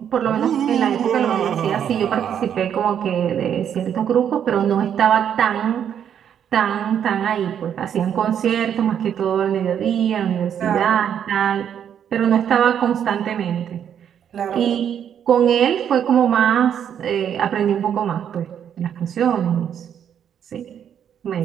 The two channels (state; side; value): quieter; left; 8.9 dB